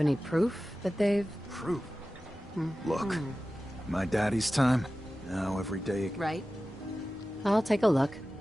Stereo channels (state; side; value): normal; both; correlation 0.95